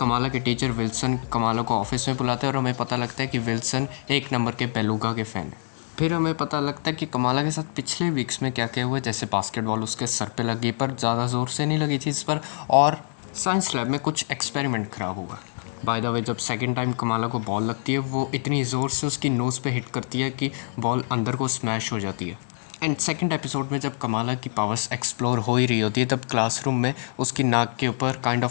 के टीचर विल्सन कमाला को ऑफिस में बुलाते हैं और हमें पता लगता है कि विल्सन एक नंबर के बेलुगा के फ़ैन है। फिर हमें पता लगता है कि कमाला के साथ पिछले वीक्स में क्या क्या हुआ, जैसे बास्केटबॉल उसके सर पे लगी पर ज़्यादा ज़ोर से नहीं लगी थी इस पर, और साइंस लैब में कुछ एक्सपेरिमेंट ख़राब हुआ। बाय द वे जब सेकंड टाइम कमाला को बॉल लगती है वो इतनी ज़ोर से उसकी नोज़ पे हिट करती है कि बॉल अंदर को स्मैश हो जाती है। एंड सेकंड एपिसोड में जब कमाला की पावर्स एक्सप्लोर हो ही रही होती है तब क्लासरूम में उसकी नाक के ऊपर काइंड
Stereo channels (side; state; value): right; silent; digital silence